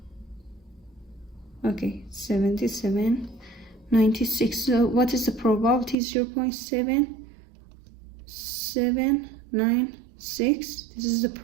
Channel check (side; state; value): left; drops out; at 6.0 s